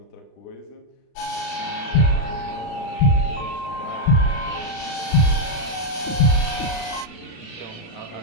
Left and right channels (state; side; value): late; right; 36 ms